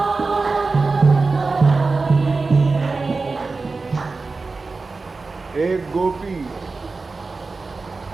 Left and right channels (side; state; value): left; quieter; 4.0 dB